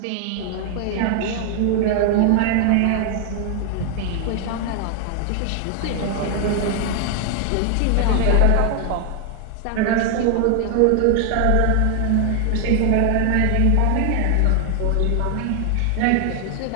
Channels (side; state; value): both; different; correlation 0.00